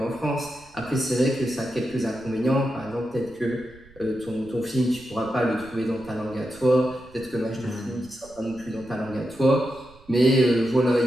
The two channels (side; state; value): right; noise; rumble, 24 dB below the sound